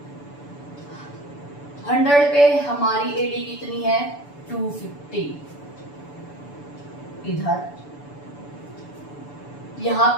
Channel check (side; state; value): right; late; 6.9 ms